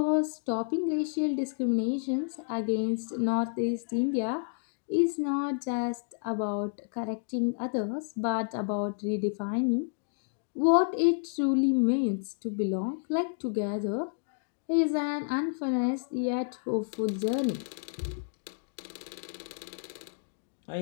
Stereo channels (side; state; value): right; silent; digital silence